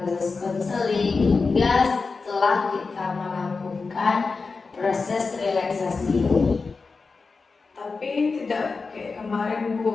konseling hingga setelah kita melakukan proses relaksasi ini? Tapi tidak kayak kemarin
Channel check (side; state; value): right; quieter; 4.4 dB